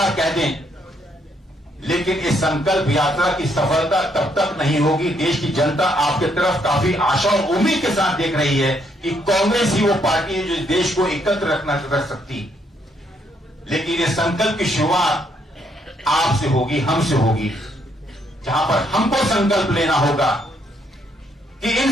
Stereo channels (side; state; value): both; normal; correlation 0.72